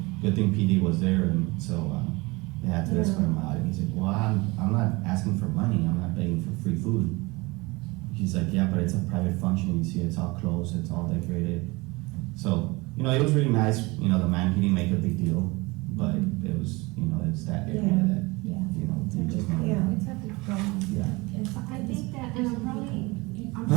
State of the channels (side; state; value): left; quieter; 24.2 dB